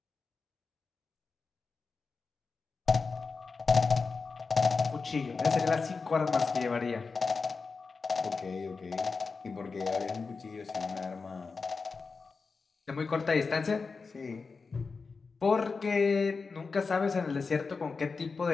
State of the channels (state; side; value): quieter; right; 4.6 dB